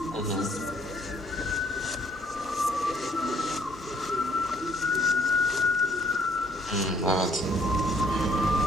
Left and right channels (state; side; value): normal; both; correlation 0.65